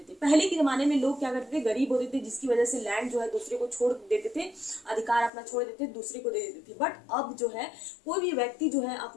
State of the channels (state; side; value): drops out; right; at 5.3 s